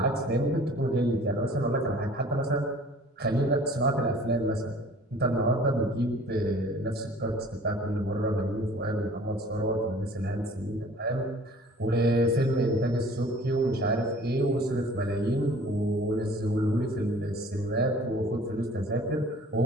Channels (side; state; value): both; normal; correlation 0.49